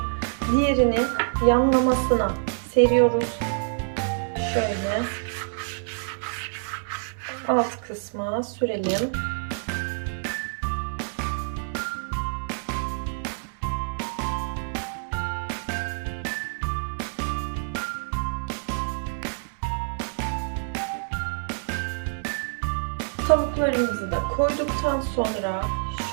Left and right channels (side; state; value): left; silent; digital silence